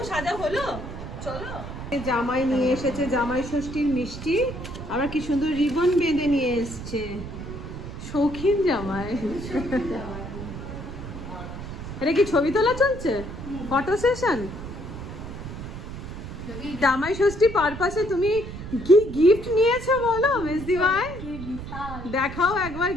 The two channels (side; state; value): right; noise; rumble, 9 dB below the sound